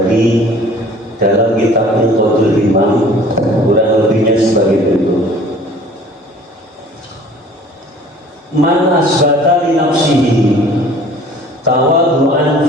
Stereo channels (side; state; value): both; normal; correlation 0.50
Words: dalam kitab Inqadul Imam, kurang lebihnya sebagai berikut. Man asbata li nafsihi tawaddu'an